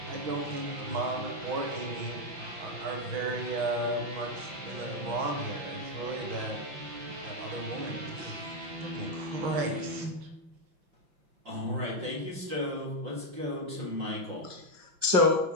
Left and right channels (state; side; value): late; left; 5.8 ms